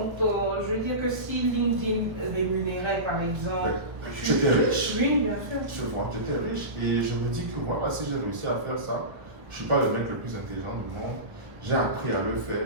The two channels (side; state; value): left; late; 1.3 ms